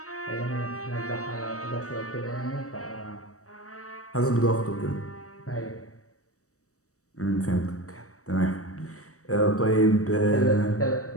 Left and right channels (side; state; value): right; late; 0.65 ms